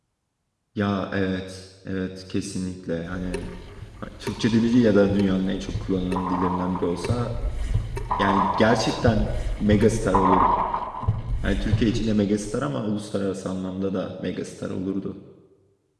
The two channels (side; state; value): both; identical; correlation 1.00